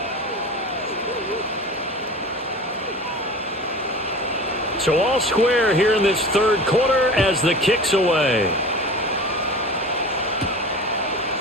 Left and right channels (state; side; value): normal; both; correlation 0.35